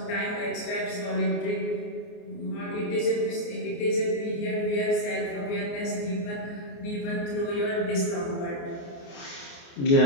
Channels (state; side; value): late; right; 29 ms